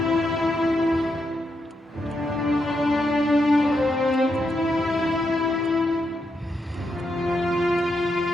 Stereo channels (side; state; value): both; normal; correlation 0.82